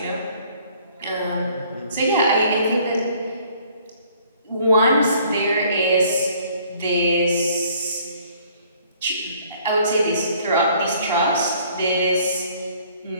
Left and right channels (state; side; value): inverted; both; correlation -0.59